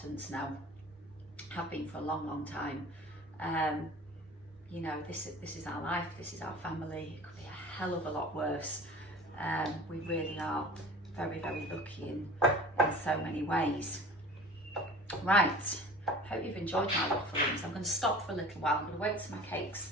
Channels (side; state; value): both; normal; correlation 0.40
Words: now. Have been for a long, long time. You know, this is our life, this is our family. It could be a hell of a lot worse. We really are very, very lucky in so many ways. Right, hope you've enjoyed my wafflings. I'm going to stop for a little while. I'm going to wait till my cakes